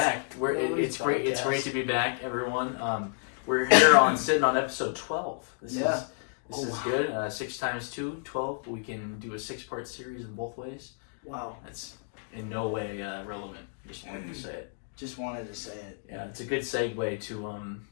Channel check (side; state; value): right; silent; digital silence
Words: It's great. It's Podcast. great to be back, everyone. We're here sitting on episode 12. This is good. 6 times 2, 12. We can do a 6-part series in both ways. Wow. That's in no way relevant. Just wanted to say it. Just wanted to say it. Yeah, it's a good segue to